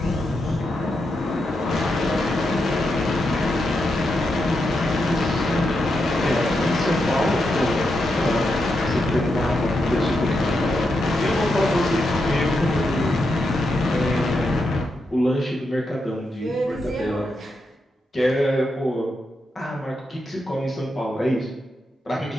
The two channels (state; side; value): normal; both; correlation 0.84